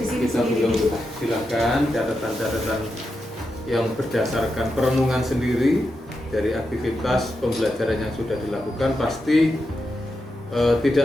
silakan catatan-catatan yang berdasarkan perenungan sendiri dari aktivitas pembelajaran yang sudah dilakukan. Pasti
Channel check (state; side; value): normal; both; correlation 0.87